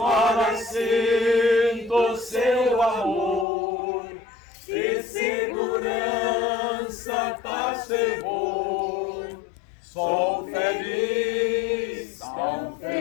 sinto seu amor e segurança traz fervor. Sou feliz, tão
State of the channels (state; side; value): drops out; right; at 3.5 s